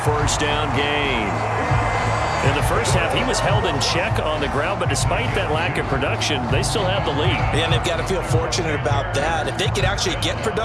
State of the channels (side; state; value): both; identical; correlation 1.00